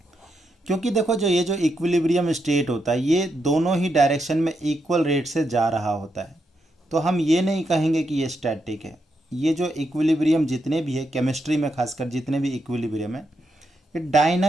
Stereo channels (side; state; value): both; normal; correlation 0.82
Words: क्योंकि देखो जो ये जो इक्विलिब्रियम स्टेट होता है ये दोनों ही डायरेक्शन में इक्वल रेट से जा रहा होता है, तो हम ये नहीं कहेंगे कि ये स्टैटिक है। ये जो इक्विलिब्रियम जितने भी है केमिस्ट्री में, खासकर जितने भी इक्विलिब्रियम है, ये